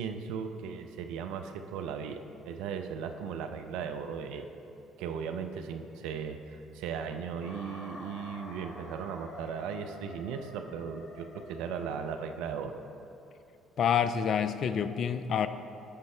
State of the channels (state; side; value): normal; both; correlation 0.50